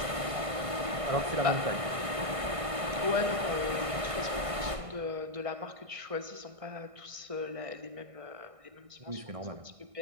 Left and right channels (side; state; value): left; late; 1.6 ms